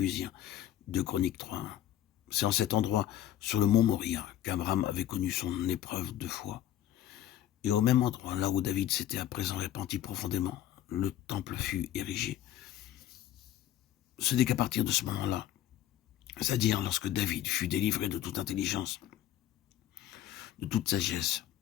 de Chroniques 3:1. C'est en cet endroit, sur le mont Moria, qu'Abraham avait connu son épreuve de foi. Et au même endroit, là où David s'était à présent repenti profondément, le temple fut érigé. Ce n'est qu'à partir de ce moment-là, c'est-à-dire lorsque David fut délivré de toute intelligence, de toute sagesse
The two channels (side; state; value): right; quieter; 12.2 dB